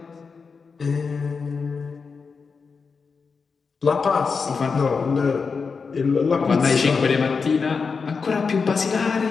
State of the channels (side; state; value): right; quieter; 5.1 dB